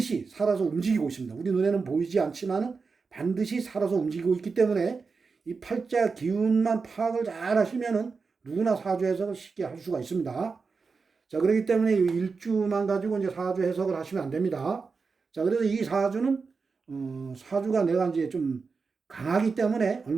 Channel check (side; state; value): left; quieter; 4.8 dB